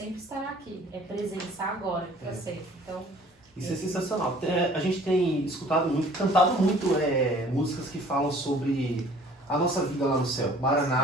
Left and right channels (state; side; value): normal; both; correlation 0.52